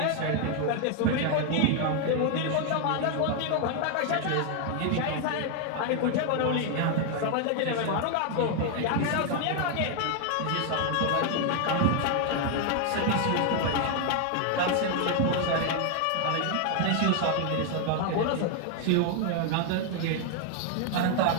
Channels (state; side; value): different; both; correlation 0.00